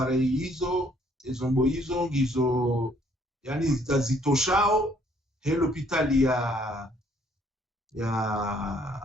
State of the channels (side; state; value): both; normal; correlation 0.64